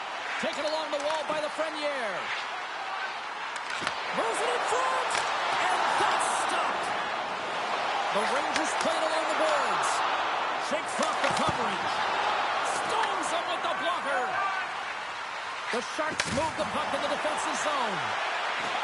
Taken along the wall by the Frenier. Moves it in front, and that's stopped. The Rangers played along the boards. Shakes off the coverage. Stones him with the blocker. The Sharks move the puck in the defensive zone.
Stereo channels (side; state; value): both; identical; correlation 1.00